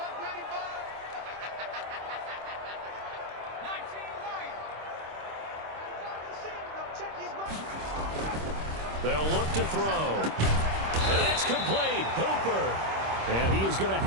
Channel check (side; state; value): left; late; 26 ms